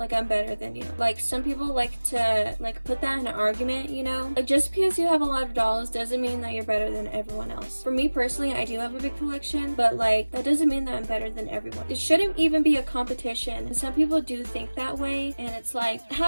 I'm better than you. Like some people like to put that in an argument, like just because you have a lot of dolls doesn't mean that you're better than everyone else. For me personally, I do have a big collection, but that doesn't mean that I'm better than everyone. It shouldn't even be a competition, and some people do think that way, and it's like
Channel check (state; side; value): inverted; both; correlation -1.00